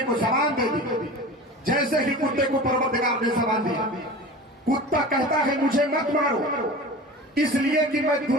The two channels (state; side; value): normal; both; correlation 0.35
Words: کو زبان دے دی. جیسے ہی کتے کو پروردگار نے زبان دی, کتا کہتا ہے مجھے مت مارو, اس لیے کہ میں